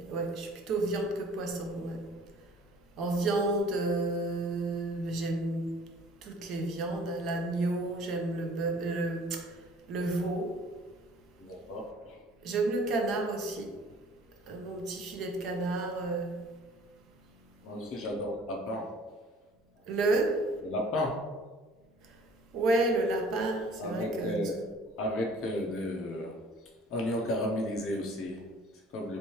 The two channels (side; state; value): both; normal; correlation 0.52